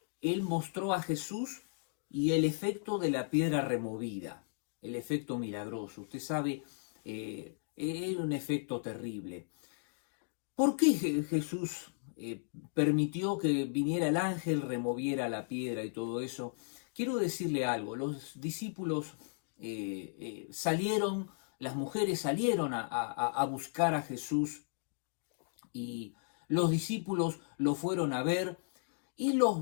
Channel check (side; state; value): right; silent; digital silence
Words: él mostró a Jesús y el efecto de la piedra removida, el efecto milagroso. Usted sabe, es un efecto terrible. ¿Por qué Jesús permitió que viniera el ángel, removiera la piedra y todo eso? Quiero decirle algo, los discípulos salieron, las mujeres salieron a buscar a Jesús y los discípulos lo fueron a ver y los